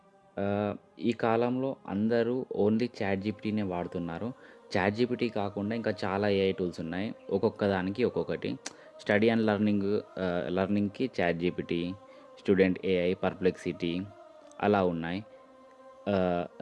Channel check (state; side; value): identical; both; correlation 1.00